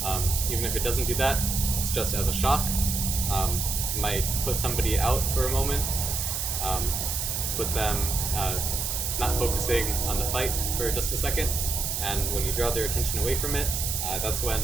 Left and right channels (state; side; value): noise; right; hiss, 1 dB below the sound